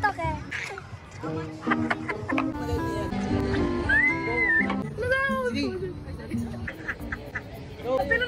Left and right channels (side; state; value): both; identical; correlation 1.00